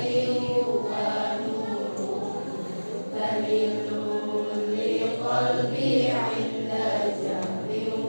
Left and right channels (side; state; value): both; inverted; correlation -1.00